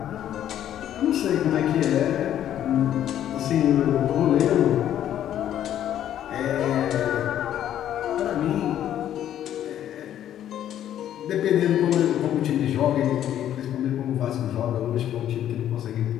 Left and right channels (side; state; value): right; quieter; 11.1 dB